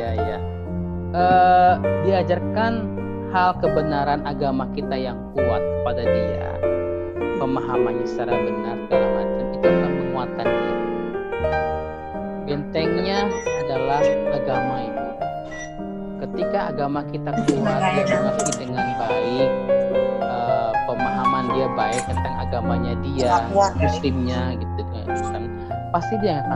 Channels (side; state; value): both; identical; correlation 1.00